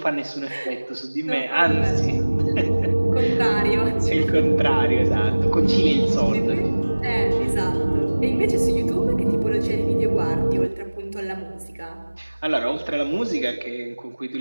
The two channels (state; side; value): inverted; both; correlation -1.00